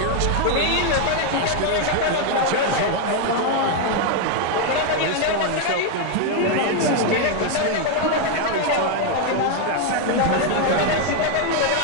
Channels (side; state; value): both; different; correlation 0.01